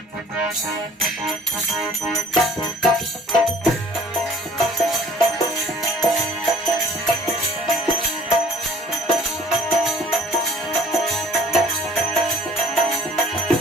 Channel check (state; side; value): normal; both; correlation 0.52